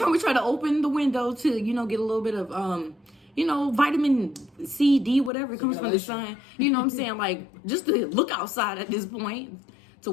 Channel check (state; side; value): drops out; right; at 5.3 s